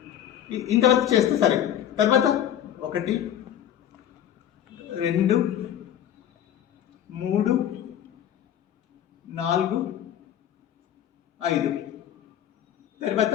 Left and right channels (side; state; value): right; quieter; 10.6 dB